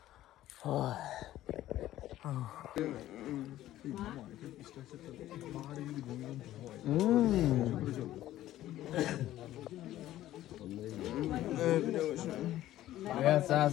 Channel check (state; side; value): quieter; right; 14.0 dB